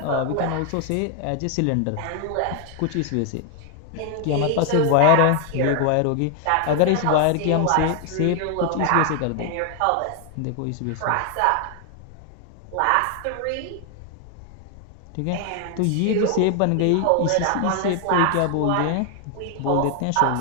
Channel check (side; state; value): both; different; correlation 0.00